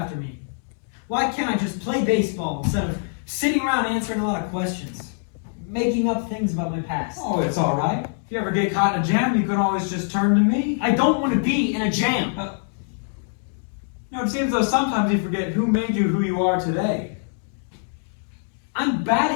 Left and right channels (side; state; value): right; silent; digital silence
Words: me? Why can't I just play baseball instead of sitting around answering a lot of questions? Making up things about my past. Oh, it's all right. If you ever get caught in a jam, you can always just turn to me. I don't want to be in a jam. It seems though sometimes you forget who made you who you are today. I'm